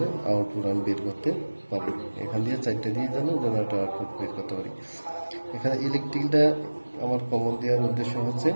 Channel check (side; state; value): both; inverted; correlation -1.00